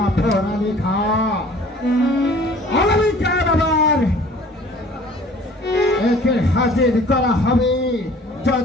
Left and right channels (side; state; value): both; normal; correlation 0.50